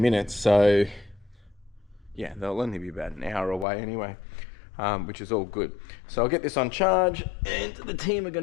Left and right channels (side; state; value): right; drops out; at 3.7 s